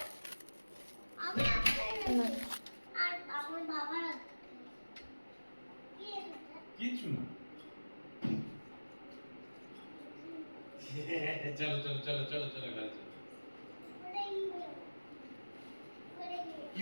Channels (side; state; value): both; inverted; correlation -1.00